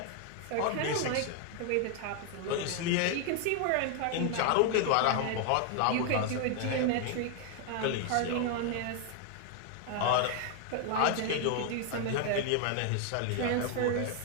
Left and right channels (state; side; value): different; both; correlation 0.00